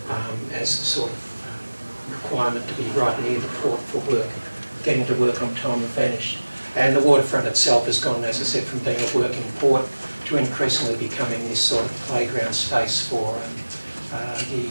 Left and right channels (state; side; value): inverted; both; correlation -1.00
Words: as a sort of requirement to be right near the port for work. Getting to work on time have vanished. And the waterfront itself has gone, as I said, from being a working port to increasingly becoming this sort of playground space for